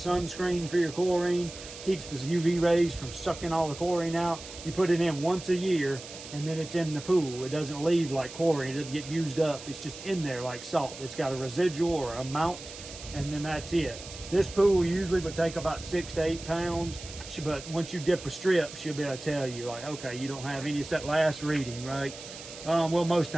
for your chlorine, keeps the UV rays from sucking all the chlorine out. You put it in once a year, and then it's in the pool. It doesn't leave like chlorine, it doesn't get used up. It's just in there like salt. It's got a residual or a amount, and then that's it. This pool usually would take about 6 to 8 pounds, but once you dip a strip, she'll be able to tell you, like, okay, you don't have any. It's that last reading, right? Well, most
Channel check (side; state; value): right; noise; hiss, 14 dB below the sound